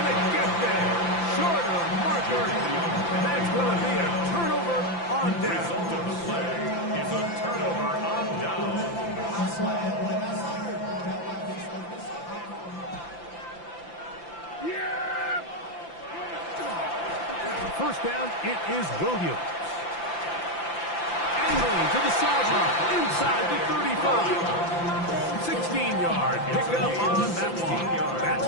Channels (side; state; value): right; late; 5.9 ms